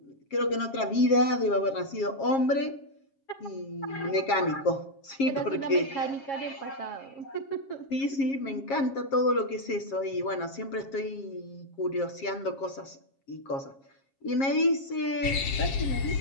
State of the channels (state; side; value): late; right; 7.4 ms